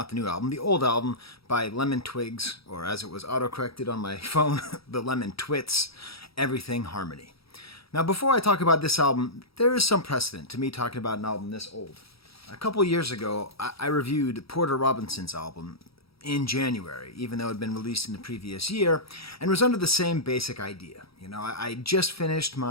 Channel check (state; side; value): late; right; 0.76 ms